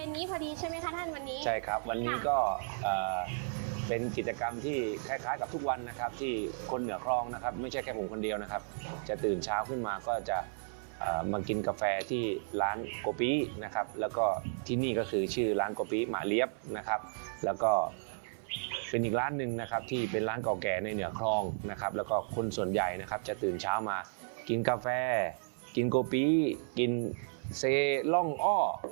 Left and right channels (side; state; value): left; silent; 55 dB below the other